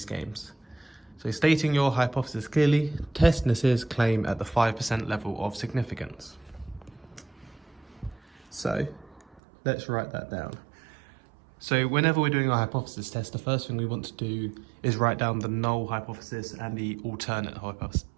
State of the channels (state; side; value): drops out; left; at 9.4 s